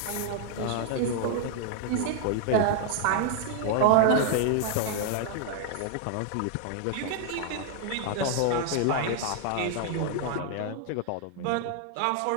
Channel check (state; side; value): different; both; correlation 0.00